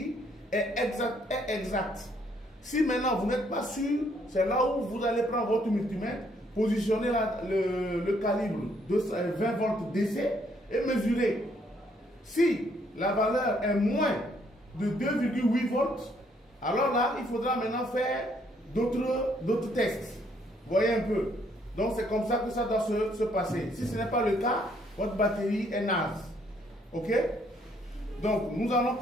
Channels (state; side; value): normal; both; correlation 0.68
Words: est exacte. Si maintenant vous n'êtes pas sûr, c'est là où vous allez prendre votre multimètre, positionner le calibre de 20 volts DC et mesurer. Si la valeur est moins de 2,8 volts, alors là, il faudra maintenant faire d'autres tests. Voyez un peu. Donc, c'est comme ça que ça doit se passer. Si ce n'est pas le cas, votre batterie est naze. OK? Donc, nous allons